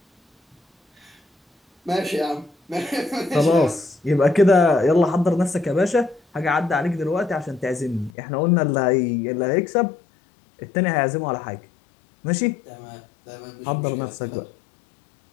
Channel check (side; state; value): right; drops out; at 8.1 s